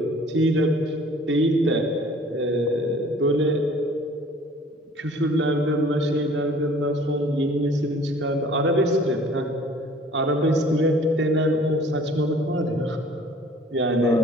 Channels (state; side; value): normal; both; correlation 0.51